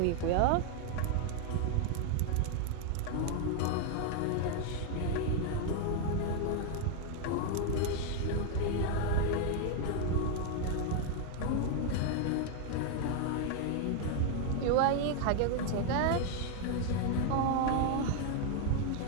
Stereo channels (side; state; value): both; different; correlation 0.00